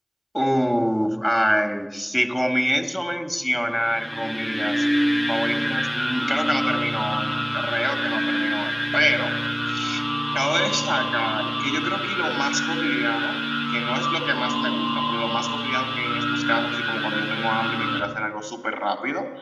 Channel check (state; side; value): identical; both; correlation 1.00